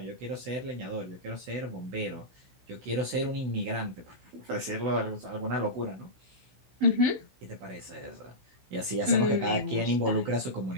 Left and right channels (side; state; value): left; late; 16 ms